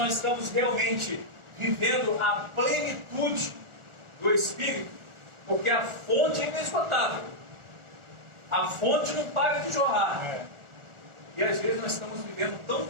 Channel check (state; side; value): late; left; 1.4 ms